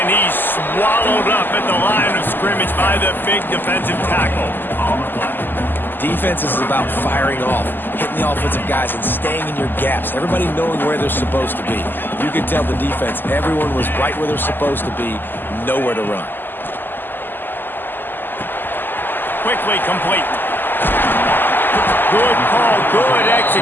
he's swallowed up at the line of scrimmage by the big defensive tackle. Defense is about firing off, hitting the offensive guys, and staying in your gaps. Everybody knowing where they're supposed to be. You can tell the defense, everyone was right where they're supposed to be, nowhere to run. Quickly complete. Good call, good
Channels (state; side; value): late; right; 0.092 ms